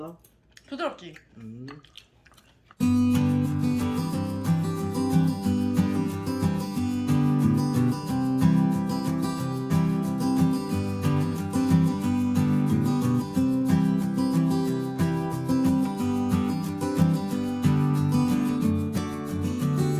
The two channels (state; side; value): identical; both; correlation 1.00